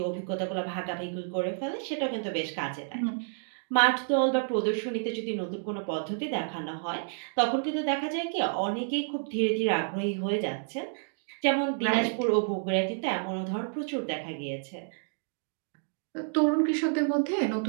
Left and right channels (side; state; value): left; silent; digital silence